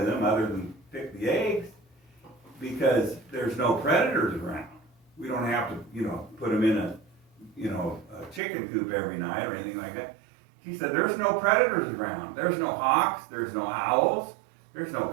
them other than pick the eggs, because there's no predators around. We don't have to, put them in a chicken coop every night or anything like that. He said, there's no predators around. There's no hawks, there's no owls, there's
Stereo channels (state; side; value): drops out; left; at 8.4 s